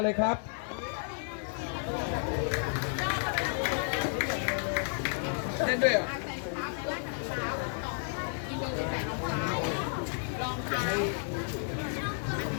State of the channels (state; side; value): silent; right; 56 dB below the other